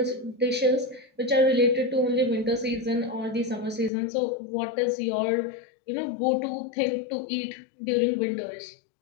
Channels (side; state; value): right; drops out; at 3.9 s